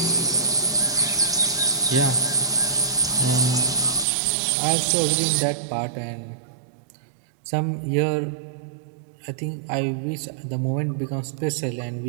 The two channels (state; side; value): drops out; left; at 4.0 s